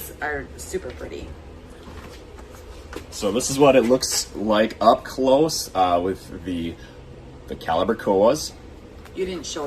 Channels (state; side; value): identical; both; correlation 1.00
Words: are super pretty. So this is what it looks like up close with the caliber koas. You didn't